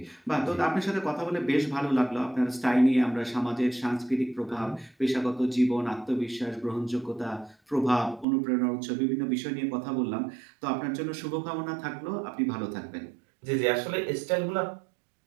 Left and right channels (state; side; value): drops out; left; at 8.2 s